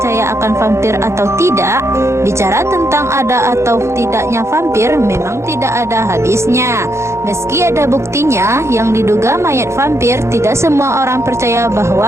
akan vampir atau tidak? Bicara tentang ada atau tidaknya vampir memang tidak ada habisnya. Meski ada buktinya yang diduga mayat vampir, tidak semua orang percaya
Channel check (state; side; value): late; left; 0.13 ms